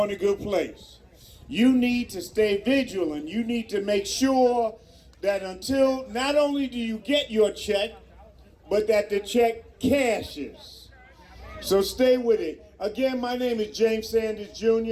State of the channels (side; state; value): both; identical; correlation 1.00